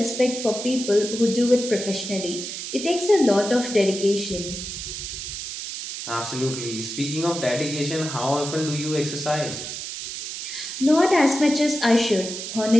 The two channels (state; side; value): noise; right; hiss, 7 dB below the sound